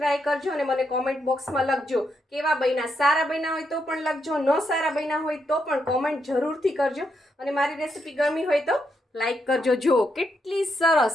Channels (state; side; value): normal; both; correlation 0.80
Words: કરજો અને મને કોમેન્ટ બોક્સમાં લખજો કેવા બન્યા। સારા બન્યા હોય તો પણ લખજો, ન સારા બન્યા હોય તો પણ કોમેન્ટ જરૂરથી કરજો, અને મારી રેસીપી ગમી હોય તો લાઈક કરજો। જો કેટલી